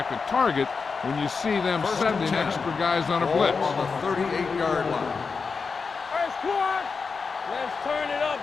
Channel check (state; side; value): quieter; right; 5.0 dB